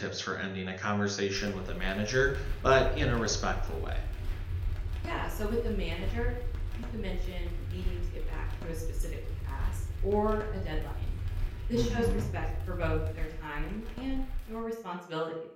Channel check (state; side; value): identical; both; correlation 1.00